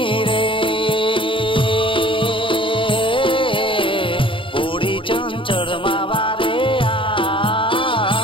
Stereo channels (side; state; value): right; late; 0.25 ms